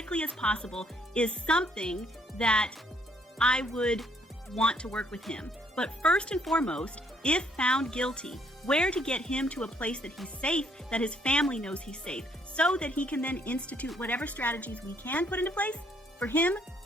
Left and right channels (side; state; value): both; normal; correlation 0.68